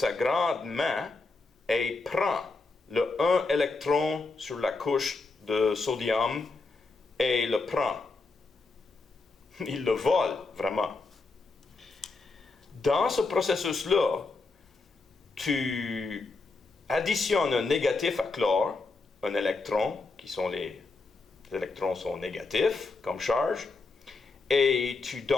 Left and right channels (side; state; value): right; quieter; 3.8 dB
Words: grande main et prend le 1 électron sur la couche de sodium et le prend. Il le vole, vraiment. Dans ce processus-là, tu additionnes un négatif à chlore, un électron, les électrons sont négatifs comme charge, et tu